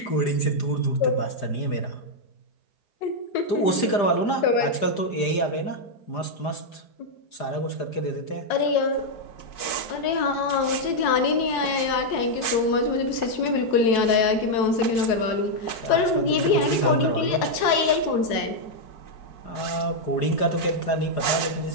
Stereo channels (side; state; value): right; late; 4.7 ms